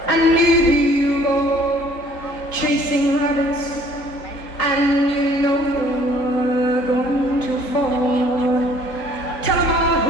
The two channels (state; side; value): late; right; 3.8 ms